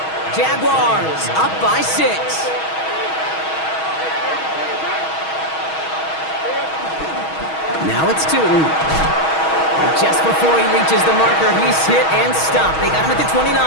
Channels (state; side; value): late; right; 6.3 ms